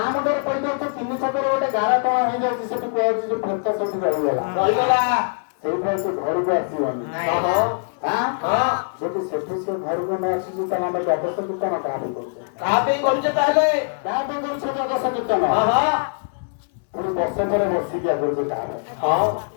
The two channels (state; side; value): silent; right; digital silence